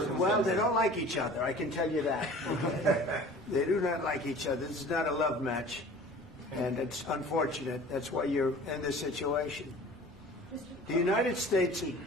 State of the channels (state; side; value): normal; both; correlation 0.44